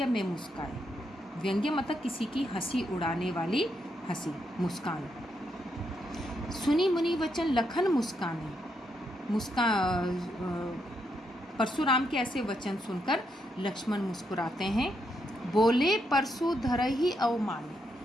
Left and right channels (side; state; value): both; normal; correlation 0.79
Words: में मुस्काए। व्यंग्य मतलब किसी की हंसी उड़ाने वाली हंसी, मुस्कान। सुनी मुनि वचन लखन मुस्काने, परशुराम के ऐसे वचन सुनकर लक्ष्मण मुस्कुराते हैं। बोले परशु धरहि अवमाने,